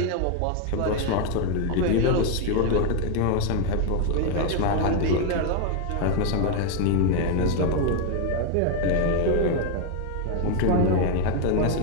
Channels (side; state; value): both; different; correlation 0.01